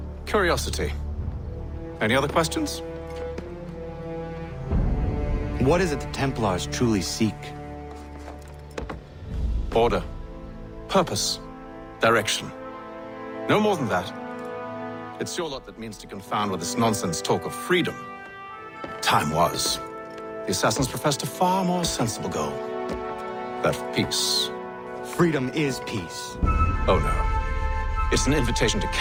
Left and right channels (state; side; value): identical; both; correlation 1.00